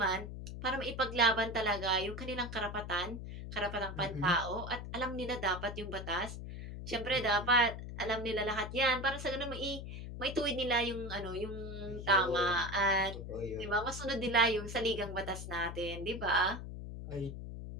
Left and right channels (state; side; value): noise; left; hum, 8 dB below the sound